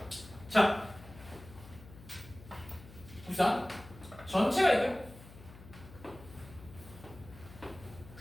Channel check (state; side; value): noise; left; hum, 18 dB below the sound